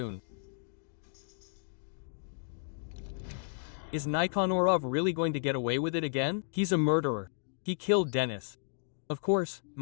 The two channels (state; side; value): silent; right; digital silence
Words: Is Nikonorov really going to get away with it again? He's a murderer. He killed Dennis. Of course,